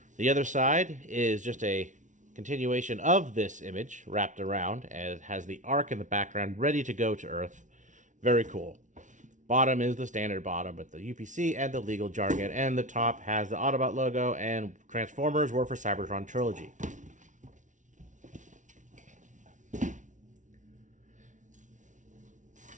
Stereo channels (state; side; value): late; left; 0.37 ms